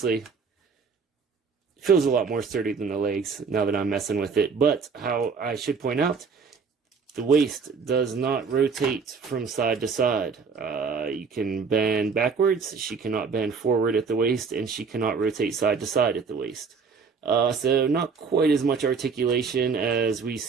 it feels a lot more sturdy than the legs now that I'm messing with it. But how I should point out, the waist does not rotate from side to side. You can bend backwards. She cannot bend forward at the waist, and she cannot rotate side to side at the waist. So not quite as much articulation as we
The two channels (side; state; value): left; quieter; 5.3 dB